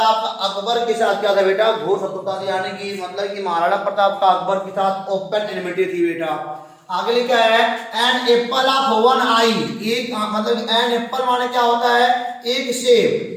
का अकबर के साथ क्या था बेटा? घोर शत्रुता थी। यानी कि मतलब कि महाराणा प्रताप का अकबर के साथ ओपन एनिमिटी थी बेटा। आगे लिखा है एन एप्पल ऑफ वन आई। एक मतलब एन एप्पल माने क्या होता है? एक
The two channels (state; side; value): identical; both; correlation 1.00